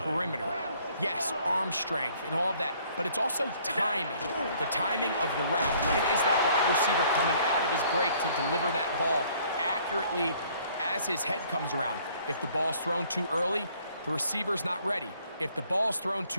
Yes, arm strength and all of that, but it's also timing. The timing of the route. When is that wide receiver coming out of his break to deliver that ball accurately as his head comes around? If the ball's thrown too early, the receiver's not ready. If the ball's thrown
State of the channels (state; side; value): inverted; both; correlation -0.60